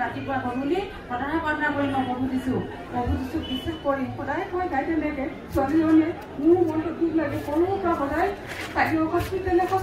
ৰাতিপুৱা গধূলি সদায় প্ৰাৰ্থনা কৰিম মই প্ৰভু দিছোঁ বিশ্বাস কৰিম সদায় মই গাই তেনেকৈ ছোৱালীজনীয়ে মোৰ মনটো দুখ লাগে সৰুৰ পৰা সদায় তাইও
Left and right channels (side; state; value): both; identical; correlation 1.00